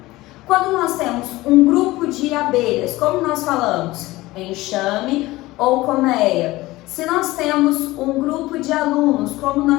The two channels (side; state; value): right; quieter; 18.9 dB